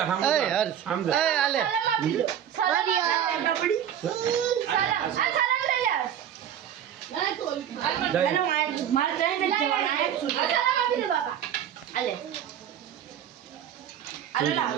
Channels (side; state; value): left; quieter; 9.8 dB